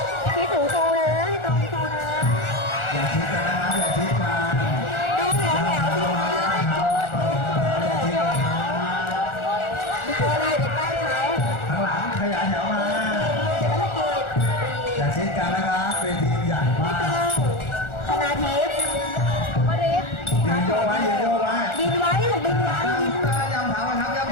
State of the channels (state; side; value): late; right; 1.4 ms